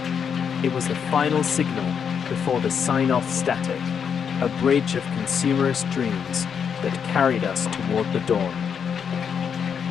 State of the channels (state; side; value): quieter; right; 7.2 dB